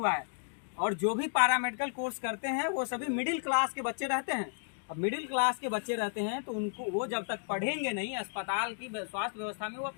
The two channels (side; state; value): right; silent; digital silence